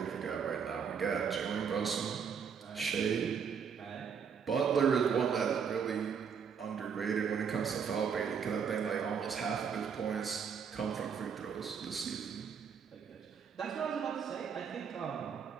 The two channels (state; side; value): quieter; left; 6.8 dB